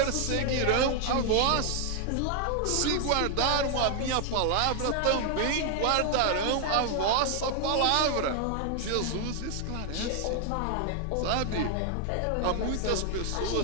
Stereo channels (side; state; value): both; different; correlation 0.00